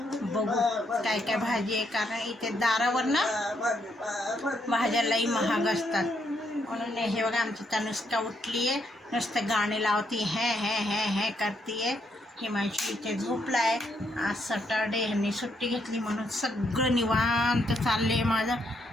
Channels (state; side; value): normal; both; correlation 0.76